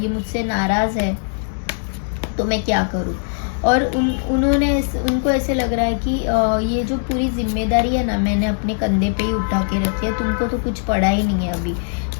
मुझसे नाराज़ है, तो मैं क्या करूँ। और उनको ऐसे लग रहा है कि ये जो पूरी जिम्मेदारी है ना, मैंने अपने कंधे पे ही उठा के रखी है, तुमको तो कुछ पड़ा ही नहीं है अभी,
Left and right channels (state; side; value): silent; right; digital silence